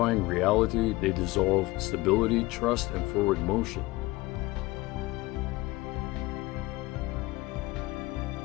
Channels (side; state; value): right; quieter; 20.7 dB